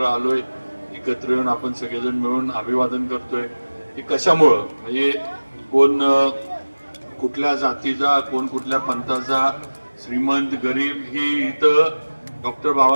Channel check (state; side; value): inverted; both; correlation -1.00